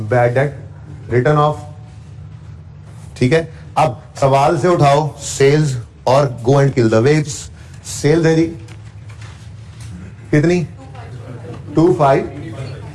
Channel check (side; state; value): both; identical; correlation 1.00